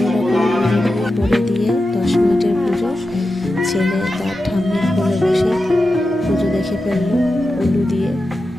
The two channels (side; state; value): both; normal; correlation 0.91